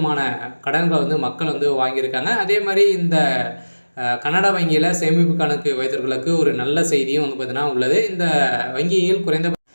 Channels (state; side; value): inverted; both; correlation -1.00